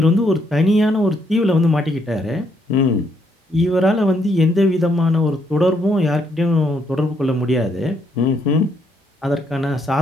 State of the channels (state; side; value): normal; both; correlation 0.73